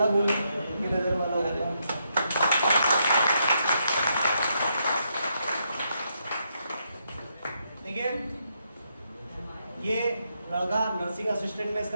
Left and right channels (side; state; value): both; inverted; correlation -0.79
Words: बोल की नजर में अलग होगा। देखिए ये लड़का नर्सिंग असिस्टेंट में